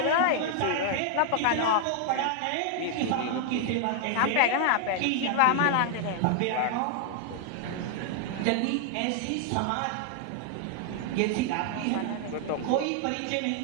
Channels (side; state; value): both; different; correlation 0.00